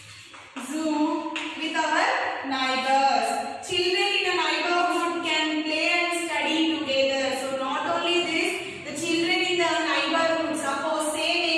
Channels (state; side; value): identical; both; correlation 1.00